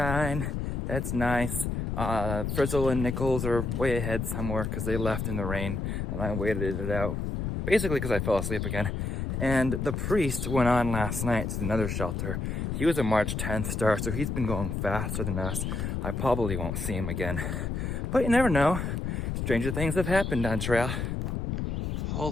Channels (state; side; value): noise; left; rumble, 2 dB below the sound